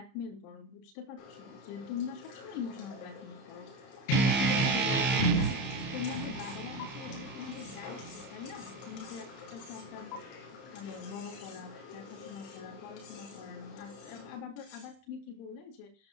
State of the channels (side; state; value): right; late; 30 ms